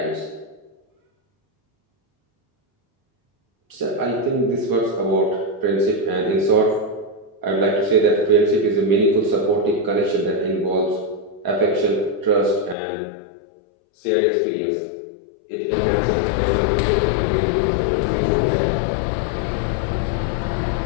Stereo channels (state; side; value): drops out; right; at 12.8 s